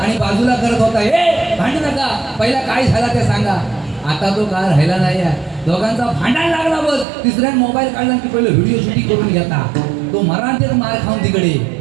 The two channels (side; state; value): left; drops out; at 7.1 s